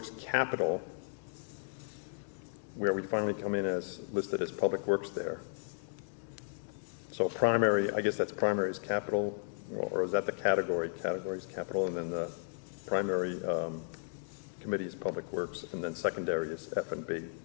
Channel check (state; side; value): silent; right; digital silence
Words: Capital, where we finally come in as listed as Public Works there. So primary, I guess that's primary is capital, or is that the category? Category is capital, and then the primary committee is Public Works, and then secondary is F&B,